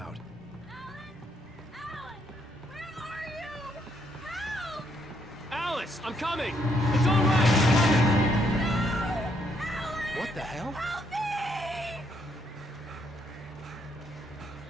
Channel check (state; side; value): normal; both; correlation 0.73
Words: Alice, I'm coming! It's all right! What the hell? Help me!